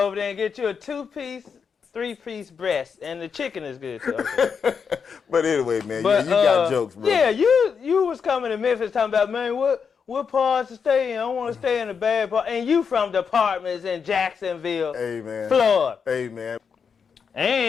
over there and get you a 2-piece, 3-piece breast, and the chicken is good too. Okay. But anyway, man, you got jokes, bro. Yeah, you was coming to Memphis talking about, man, what what parts to stay in? I want to stay in the bad part. And you from the apartments in Jacksonville, Florida. Hey, man.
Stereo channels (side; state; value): right; quieter; 6.2 dB